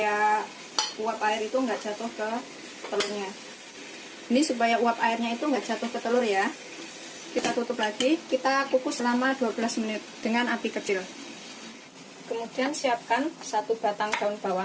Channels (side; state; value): both; identical; correlation 1.00